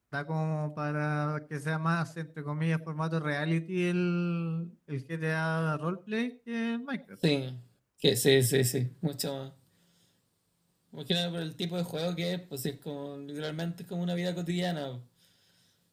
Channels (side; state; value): both; identical; correlation 1.00